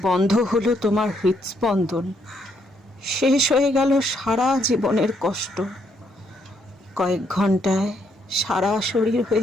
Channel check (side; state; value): both; normal; correlation 0.73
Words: বন্ধ হলো তোমার হৃদস্পন্দন। শেষ হয়ে গেল সারা জীবনের কষ্ট। কয়েক ঘন্টায় সারা শরীর